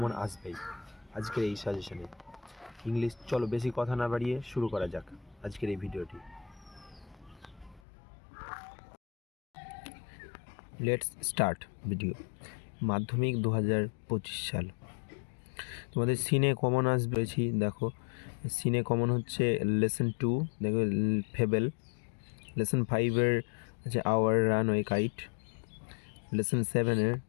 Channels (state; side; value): drops out; right; at 7.8 s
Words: আসবেই আজকের এই সাজেশনে ইংলিশ। চলো বেশি কথা না বাড়িয়ে শুরু করা যাক আজকের এই ভিডিওটি। Let's start video. মাধ্যমিক 2025 সাল। তোমাদের সিনে কমন আসবে, দেখো সিনে কমন হচ্ছে লেসন 2, দেখো ফেবেল। লেসন 5-এর আছে আওয়ার রানওয়ে কাইট। লেসন 7-এর